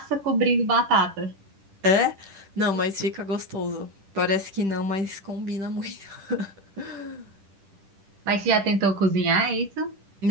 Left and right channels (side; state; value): left; late; 10 ms